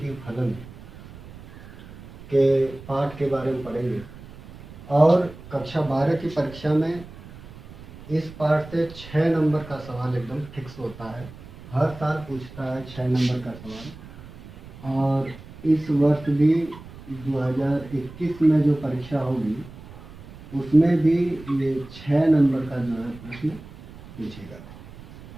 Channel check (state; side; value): noise; right; rumble, 17 dB below the sound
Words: फलन के पाठ के बारे में पढ़ेंगे। और कक्षा 12 की परीक्षा में इस पाठ से 6 नंबर का सवाल एकदम फिक्स होता है। हर साल पूछता है 6 नंबर का सवाल। और इस वर्ष भी 2021 में जो परीक्षा होगी उसमें भी ये 6 नंबर का जो है प्रश्न पूछेगा।